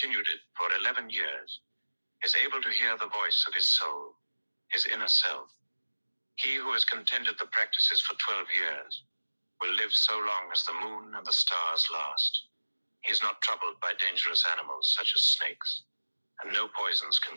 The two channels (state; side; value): inverted; both; correlation -1.00